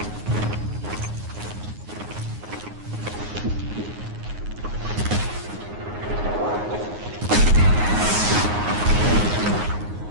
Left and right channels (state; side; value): late; left; 9.6 ms